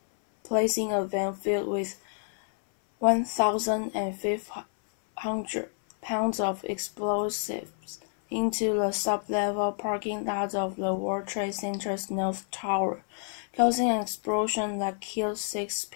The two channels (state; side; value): silent; right; 57 dB below the other